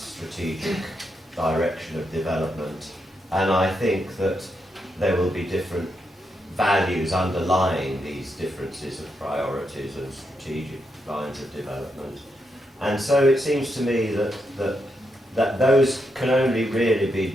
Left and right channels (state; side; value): normal; both; correlation 0.82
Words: direction of development, and I think that there will be different values underlying these differences of priorities and strategic lines of development. And so it seems to me that those can only really